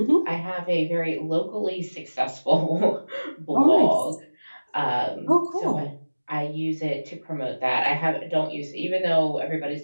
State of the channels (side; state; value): both; inverted; correlation -1.00